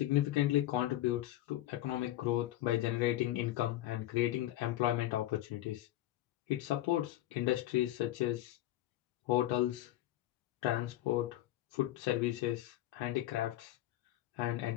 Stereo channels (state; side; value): quieter; right; 14.7 dB